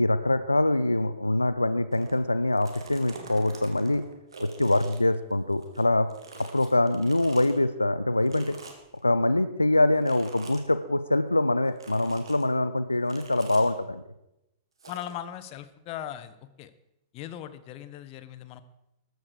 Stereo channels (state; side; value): inverted; both; correlation -0.96